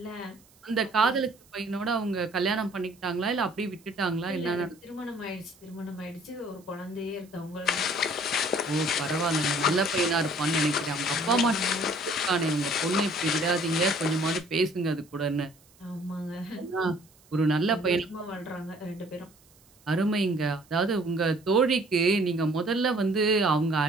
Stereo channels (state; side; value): noise; right; hiss, 29 dB below the sound